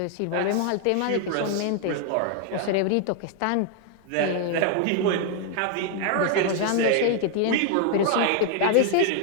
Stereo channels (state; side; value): different; both; correlation 0.00